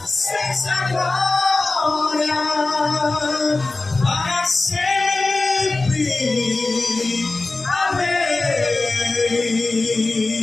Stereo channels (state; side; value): quieter; right; 3.3 dB